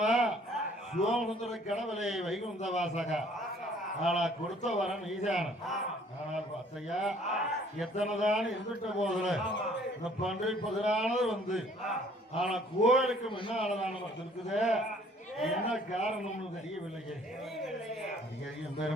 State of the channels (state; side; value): normal; both; correlation 0.58